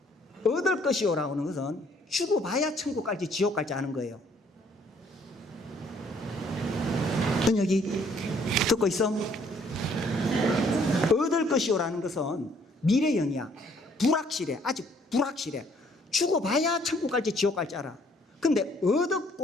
얻을 것이요 라고 하는 것은 죽어봐야 천국 갈지 지옥 갈지 아는 거예요. 넌 여기 듣고 있어? 얻을 것이요 라는 것은 미래형이야. 불확실해. 아직 불확실해. 죽어봐야 천국 갈지 지옥 갈지 알아. 근데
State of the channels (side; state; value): both; normal; correlation 0.63